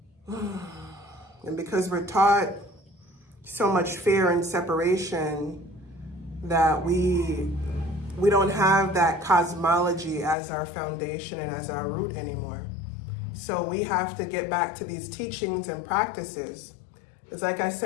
And because we're taught so much fear and separation that we don't have that cosmology as our foundation and as our root anymore. So we have to get back to these teachings and practices. It's like I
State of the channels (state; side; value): drops out; right; at 10.4 s